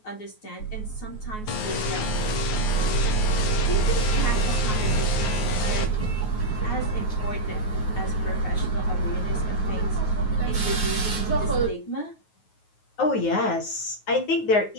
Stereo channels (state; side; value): late; right; 9.4 ms